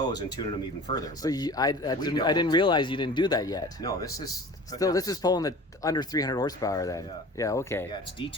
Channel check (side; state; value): both; normal; correlation 0.41